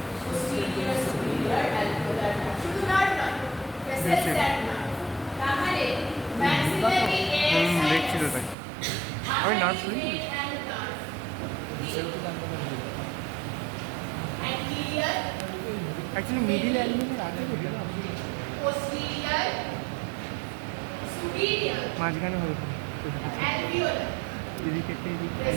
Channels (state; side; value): drops out; left; at 8.6 s